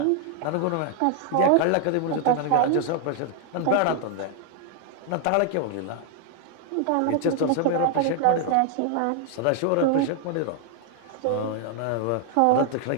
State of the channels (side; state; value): both; different; correlation 0.00